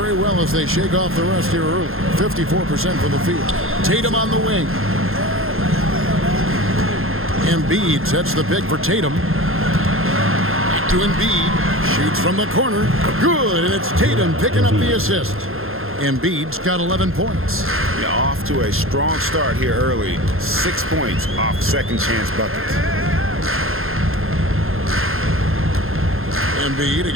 well as they shake off the rust here early. 54% from the field. Tatum on the wing. Embiid sets the pick for Tatum. Back to Embiid. Shoots from the corner. Good, and it's Tatum picking up the assist. Embiid's got 11 points. Yeah, off to a strong start here early. 6 points off second chance buckets. Embiid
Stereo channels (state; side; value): late; left; 0.61 ms